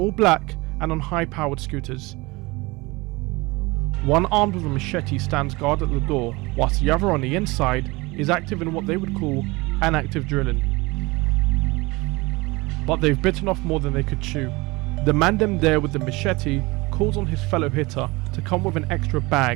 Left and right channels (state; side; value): quieter; left; 23.4 dB